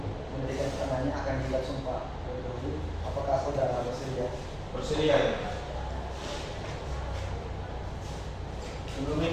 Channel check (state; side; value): identical; both; correlation 1.00